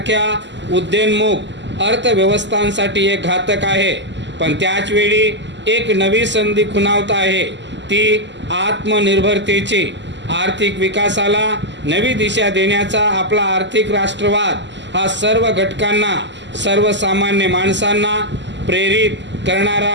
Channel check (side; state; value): left; late; 0.53 ms